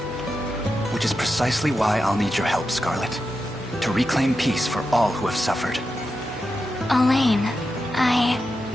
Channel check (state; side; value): normal; both; correlation 0.89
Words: Which is precisely why I'll need your help, Scarlet. To reclaim peace for all who have suffered. Elaine,